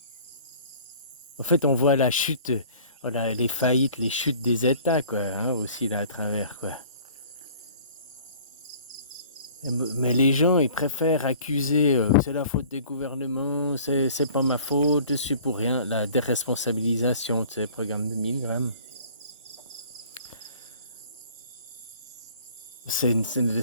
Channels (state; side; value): inverted; both; correlation -0.50